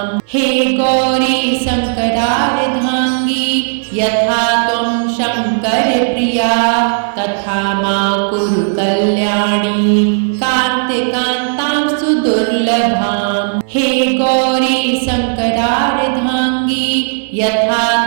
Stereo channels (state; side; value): silent; left; digital silence